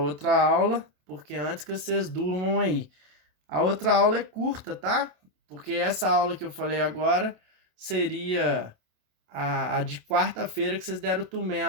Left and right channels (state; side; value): late; left; 27 ms